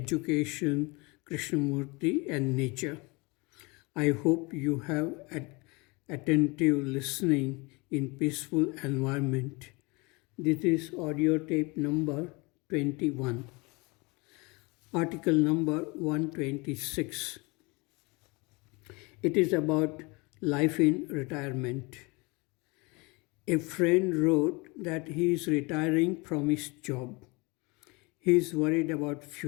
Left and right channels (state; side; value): quieter; right; 26.8 dB